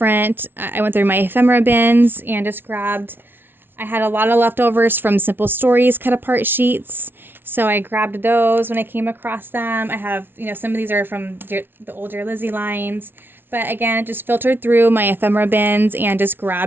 I went through my ephemera bins and just grabbed, I had a lot of leftovers from Simple Stories cut apart sheets, so I grabbed those when I came across them. I have, some of these are from the old Dear Lizzie lines, but again, just filtered through my ephemera bins and just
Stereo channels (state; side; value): late; left; 0.10 ms